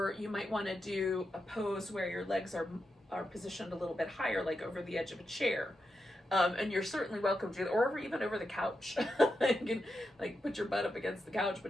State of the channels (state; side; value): normal; both; correlation 0.87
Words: you might want to do a pose where your legs are positioned a little bit higher, like over the edge of a chair. And you're certainly welcome to, or even over the couch. You can like put your butt up against the couch,